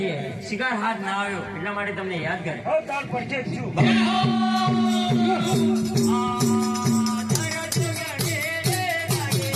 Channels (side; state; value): both; identical; correlation 1.00